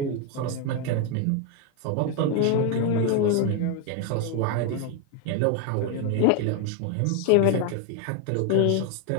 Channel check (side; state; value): both; different; correlation 0.01